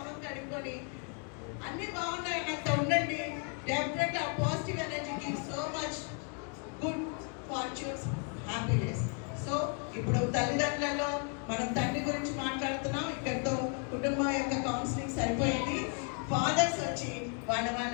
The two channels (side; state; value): right; quieter; 38.9 dB